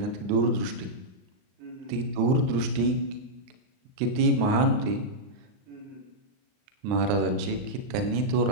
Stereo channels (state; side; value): late; left; 39 ms